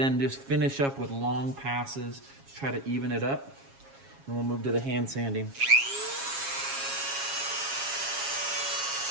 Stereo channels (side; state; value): left; late; 7.3 ms